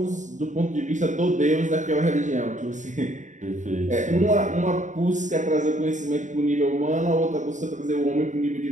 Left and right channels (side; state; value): left; late; 0.36 ms